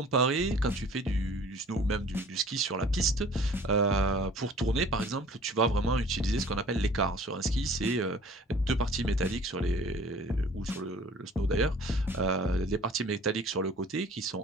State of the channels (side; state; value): both; normal; correlation 0.49